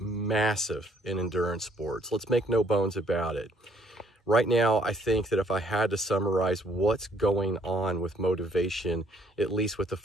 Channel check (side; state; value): both; normal; correlation 0.65